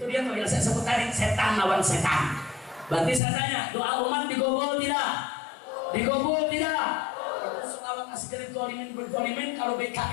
dia tuh yang saya sebut tadi, setan lawan setan. Berarti saya tanya, doa umat digobol tidak? Digobol tidak? Itu sholawat askir dzalimin bidzalimin. Kalau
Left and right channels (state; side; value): drops out; right; at 3.2 s